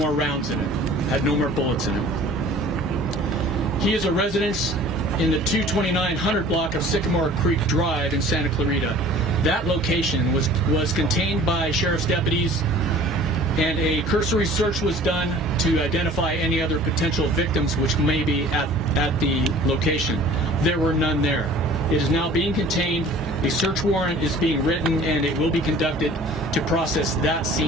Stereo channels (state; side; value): normal; both; correlation 0.47